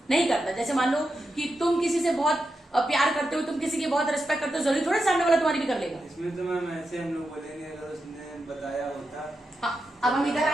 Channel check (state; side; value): normal; both; correlation 0.88